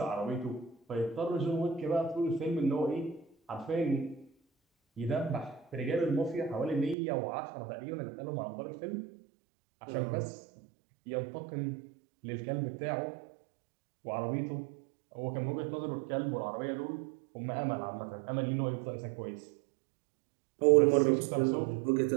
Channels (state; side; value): drops out; left; at 7.0 s